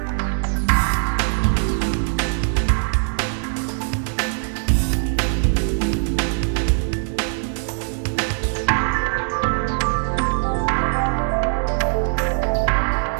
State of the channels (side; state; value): left; silent; digital silence